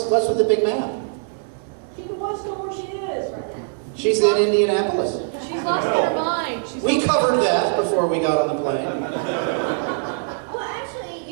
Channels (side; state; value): left; silent; digital silence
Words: with the big map? She wants to know where she is right now. She's in Indianapolis. She's lost her mind. We covered that before we got on the plane. Well, actually,